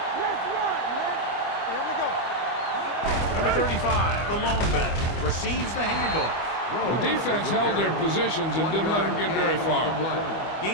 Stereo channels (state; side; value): late; right; 25 ms